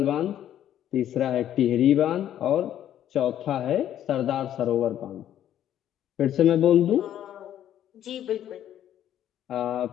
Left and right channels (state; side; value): quieter; right; 11.1 dB